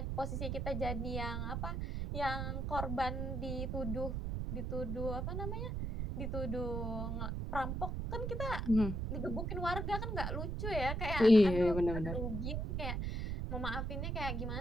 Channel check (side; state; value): right; noise; rumble, 2 dB below the sound